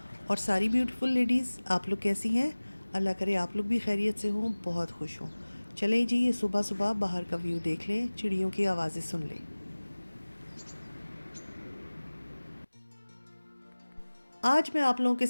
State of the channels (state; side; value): inverted; both; correlation -1.00